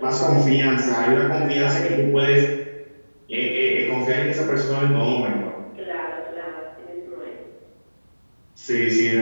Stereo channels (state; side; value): inverted; both; correlation -1.00